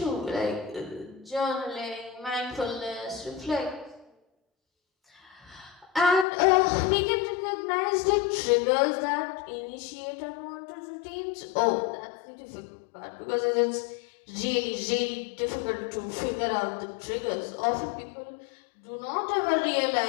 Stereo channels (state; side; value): drops out; right; at 6.2 s